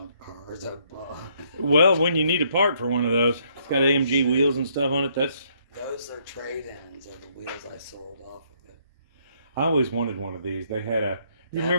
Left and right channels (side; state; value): both; inverted; correlation -0.69